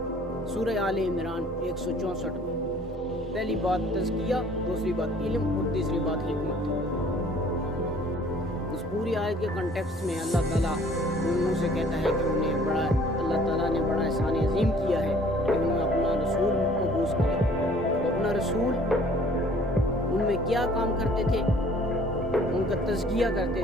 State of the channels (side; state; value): both; normal; correlation 0.55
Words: سورہ آل عمران 164 میں پہلی بات تزکیہ، دوسری بات علم اور تیسری بات حکمت۔ اس پوری آیت کے کنٹیکسٹ میں اللہ تعالیٰ ان منہ سے کہتا ہے کہ اللہ تعالیٰ نے بڑا احسان عظیم کیا ہے کہ انہوں نے اپنا رسول مبعوث کیا۔ وہ اپنا رسول ان میں کیا کام کرتے تھے؟ ان کا تزکیہ